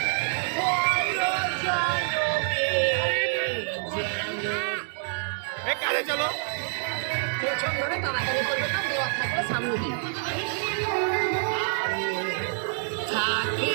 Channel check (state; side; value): silent; left; digital silence